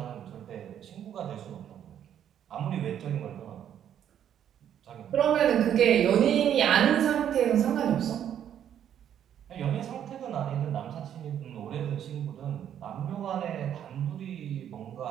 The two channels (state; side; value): quieter; left; 9.8 dB